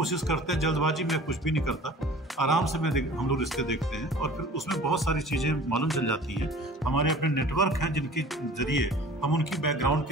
करते हैं, जल्दबाजी में कुछ भी नहीं करता, आराम से हम लोग रिश्ते देखते हैं, और फिर उसमें बहुत सारी चीज़ें मालूम चल जाती हैं। हमारे अपने नेटवर्क हैं जिनके जरिए हम उनकी बैकग्राउंड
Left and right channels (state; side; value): normal; both; correlation 0.45